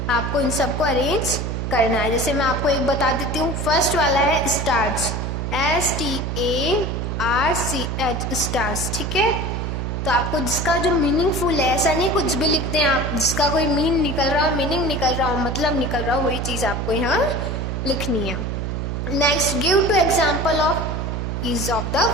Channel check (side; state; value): right; noise; hum, 2 dB below the sound